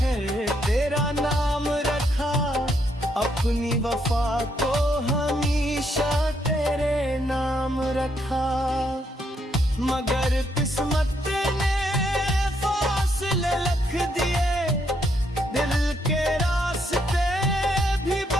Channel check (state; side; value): normal; both; correlation 0.75